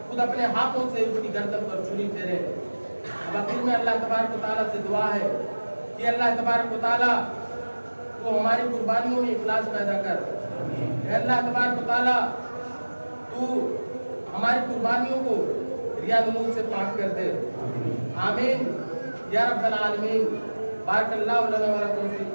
خود اپنے ہاتھوں سے اس کی گردن پر چھری پھیریں۔ اب آخر میں اللہ تبارک و تعالیٰ سے دعا ہے کہ اللہ تبارک و تعالیٰ تو ہماری قربانیوں میں اخلاص پیدا کر۔ اے اللہ تبارک و تعالیٰ تو ہماری قربانیوں کو ریا نمود سے پاک کر دے۔ آمین یا رب العالمین۔ بارک اللہ لنا و لکم فی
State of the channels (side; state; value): both; inverted; correlation -1.00